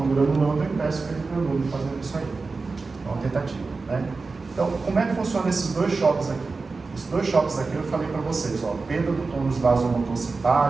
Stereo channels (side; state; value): left; quieter; 4.1 dB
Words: granulando, e peço para ele granule fazendo isso aí. É uma tentativa, né? Então, como é que funciona esses dois choques aqui? Esses dois choques aqui eu falei para vocês, ó, perda do tônus vasomotor